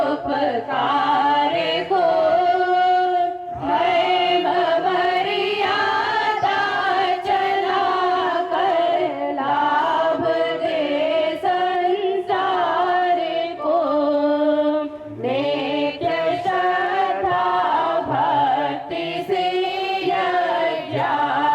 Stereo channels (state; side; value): identical; both; correlation 1.00